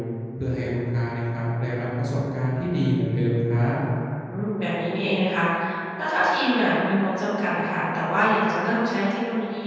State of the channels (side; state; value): both; identical; correlation 1.00